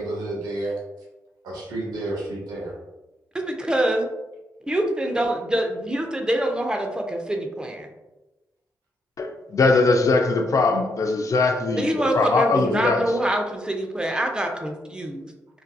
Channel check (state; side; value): normal; both; correlation 0.77